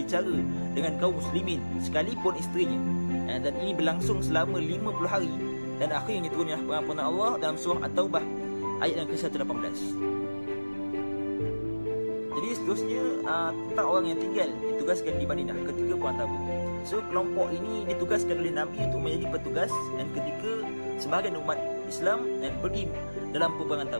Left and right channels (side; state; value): both; inverted; correlation -1.00